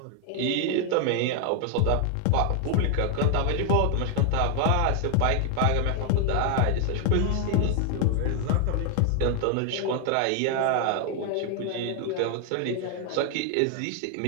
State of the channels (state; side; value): different; both; correlation 0.00